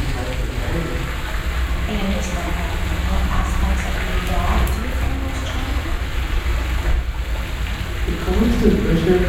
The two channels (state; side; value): identical; both; correlation 1.00